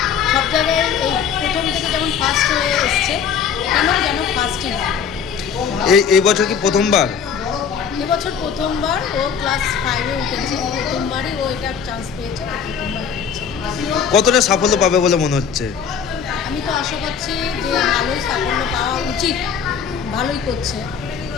সব জায়গায় এই প্রথম থেকে যেমন ফার্স্ট হয়ে এসছে, এখানেও যেন ফার্স্টই হয়। এই বছর কি প্রথমবার? এবছর প্রথমবার ও ক্লাস 5-এ উঠেছে, প্রথমবারই ও এটা চান্স পেয়েছে, প্রথমবার পেয়েছে। কতটা সাফল্য পাবে বলে মনে হচ্ছে? আমি তো আশা করছি যে ভালোই সাফল্য পাওয়া উচিত, ভালোই করছে।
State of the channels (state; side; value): quieter; right; 7.1 dB